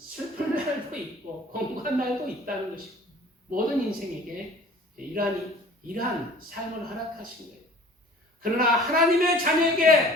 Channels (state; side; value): normal; both; correlation 0.47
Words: 날도 있고 공고한 날도 있다는 것이고 모든 인생에게 이러한 삶을 허락하신 거예요. 그러나 하나님의